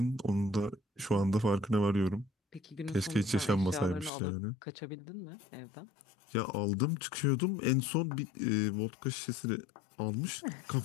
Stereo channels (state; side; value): drops out; right; at 4.1 s